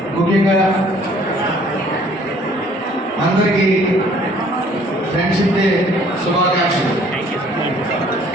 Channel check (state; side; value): normal; both; correlation 0.58